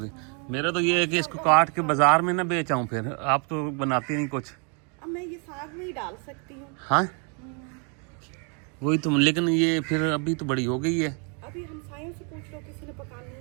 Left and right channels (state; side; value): quieter; left; 37.0 dB